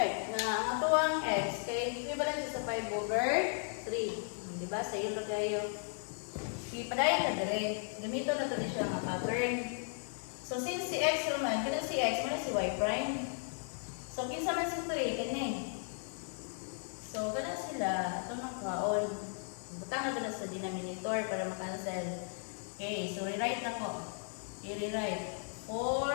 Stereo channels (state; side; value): silent; right; 54 dB below the other